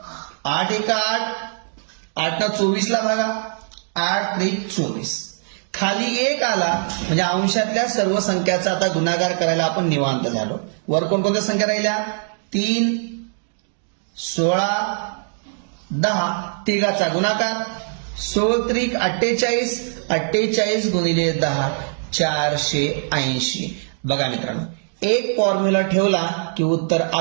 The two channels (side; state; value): left; silent; 64 dB below the other